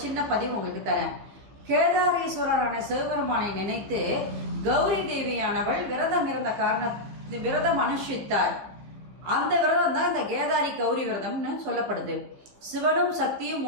சின்ன பதிவு உங்களுக்கு தரேன். கேதாரீஸ்வரரான சிவபெருமானை நினைத்து கௌரி தேவியானவள் விரதம் இருந்த விரதம் அனுஷ்டித்தார். அந்த விரதம் தான் இந்த கேதாரி கௌரி விரதம்னு சொல்லப்படுது. சிவனும் சக்தியும்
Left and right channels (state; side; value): late; left; 15 ms